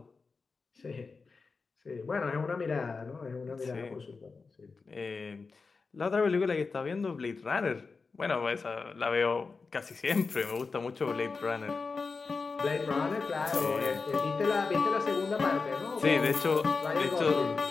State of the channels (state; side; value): quieter; right; 4.5 dB